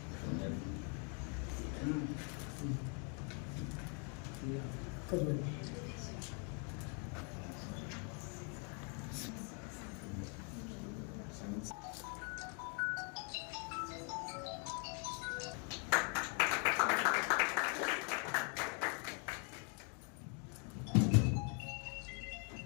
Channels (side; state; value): right; quieter; 38.2 dB